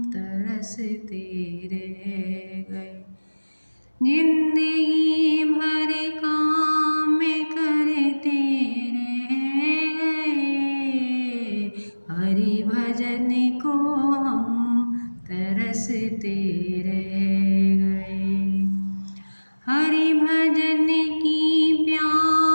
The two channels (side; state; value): both; inverted; correlation -1.00